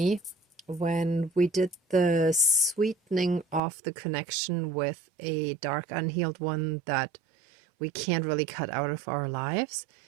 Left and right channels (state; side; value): drops out; left; at 3.6 s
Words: when we did the sweetening of the connection with a dark, unhealed one that we can't really cut out of our lives.